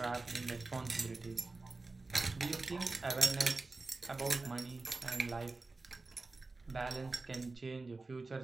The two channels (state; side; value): quieter; left; 3.5 dB